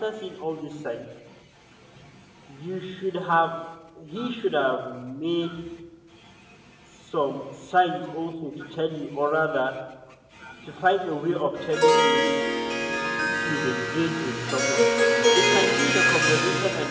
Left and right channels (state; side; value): identical; both; correlation 1.00